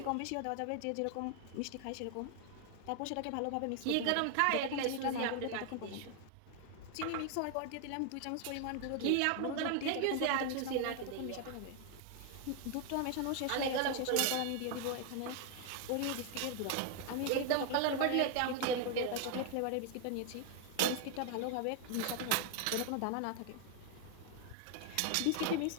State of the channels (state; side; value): different; both; correlation 0.00